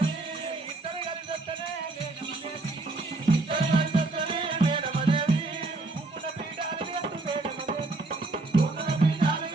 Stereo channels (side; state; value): left; quieter; 3.1 dB